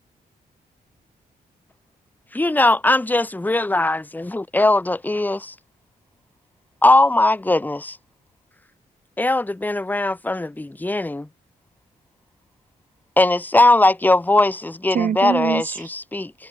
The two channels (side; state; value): both; normal; correlation 0.84